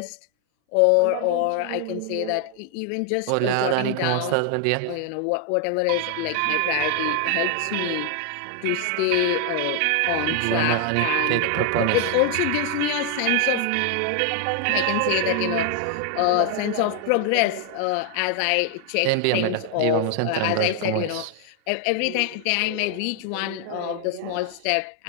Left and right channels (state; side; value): different; both; correlation 0.00